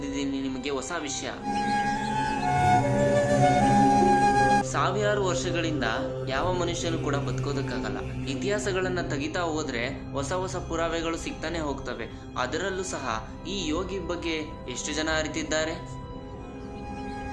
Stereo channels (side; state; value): both; identical; correlation 1.00